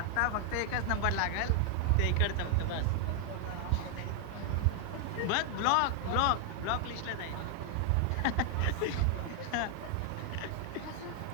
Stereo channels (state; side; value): different; both; correlation 0.00